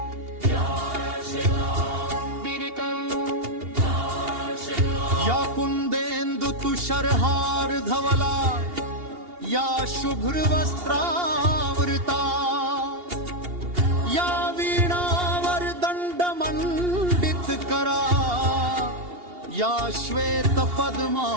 या कुंदेन्दु तुषारहार धवला, या शुभ्र वस्त्रावृता, या वीणावर दंड मंडित करा, या श्वेत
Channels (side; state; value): left; late; 2.8 ms